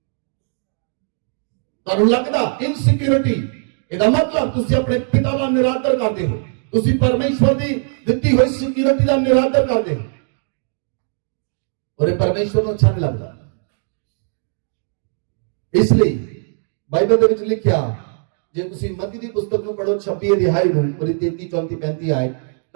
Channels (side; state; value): left; silent; 65 dB below the other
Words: ਤੁਹਾਨੂੰ ਲੱਗਦਾ इनसिक्योरिटी, ਇਹਦਾ मतलब ਤੁਸੀਂ ਆਪਣੇ ਪਿਤਾ ਦਾ ਨਿਰਾਦਰ ਕਰਦੇ ਹੋ, ਤੁਸੀਂ परमेश्वर ਦੀ ਦਿੱਤੀ ਹੋਈ सिक्योरिटी ਦਾ ਨਿਰਾਦਰ ਕਰਦੇ ਹੋ, और ये परमेश्वर ਨੂੰ अच्छा नहीं लगता। इसलिए बाइबल ਦੇ ਵਿੱਚ ਲਿਖਿਆ, ਜੇ ਤੁਸੀਂ ਮਤੀ ਦੀ ਪੁਸਤਕ ਨੂੰ ਪੜੋ 26 ਅਧਿਆਇ ਨੂੰ, ਉਹਦੀ 33, 34, 35 ਆਏ,